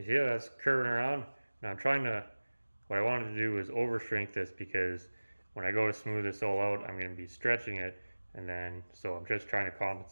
see how that's curving around? Now I'm trying to, what I wanted to do is over shrink this because when I go to smooth this all out, I'm going to be stretching it, and then, so I'm just trying to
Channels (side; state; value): both; inverted; correlation -1.00